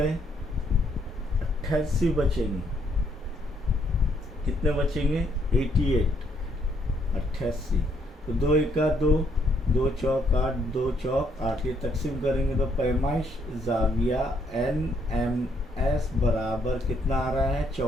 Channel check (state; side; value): normal; both; correlation 0.71